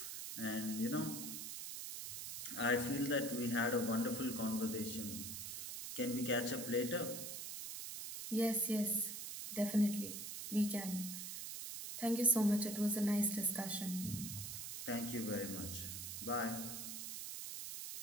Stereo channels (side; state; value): right; noise; hiss, 6 dB below the sound